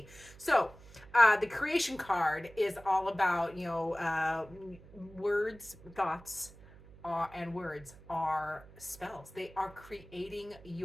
So the creation card is all about, words, thoughts, and words are spells. They are creating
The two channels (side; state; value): right; noise; hum, 21 dB below the sound